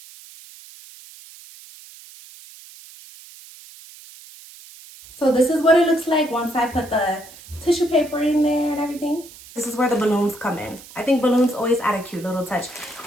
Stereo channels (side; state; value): right; noise; hiss, 19 dB below the sound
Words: So this is what it looks like once I put the tissue paper in there and everything. This is where the balloons come in. I think balloons always add a cute little touch.